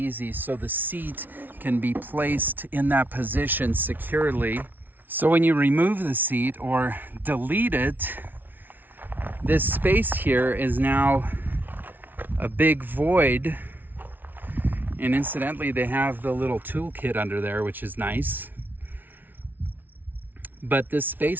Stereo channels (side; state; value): left; late; 0.087 ms